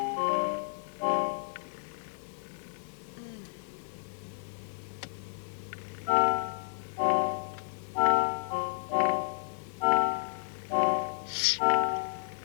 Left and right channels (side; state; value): right; silent; digital silence